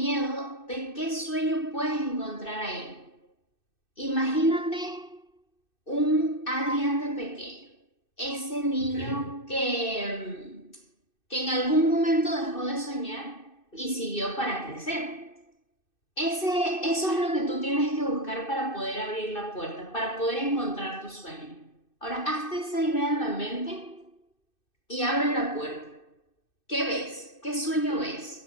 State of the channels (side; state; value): right; late; 2.6 ms